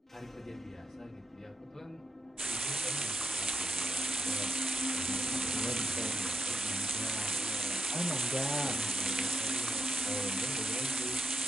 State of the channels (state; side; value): normal; both; correlation 0.77